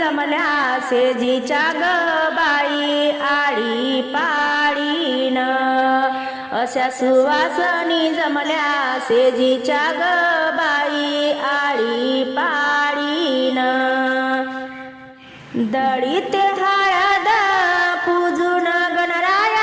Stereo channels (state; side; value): identical; both; correlation 1.00